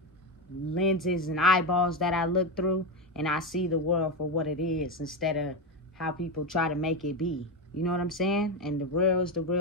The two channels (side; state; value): both; normal; correlation 0.12